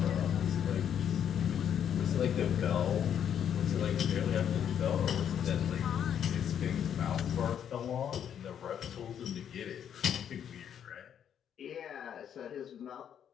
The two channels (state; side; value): quieter; right; 9.0 dB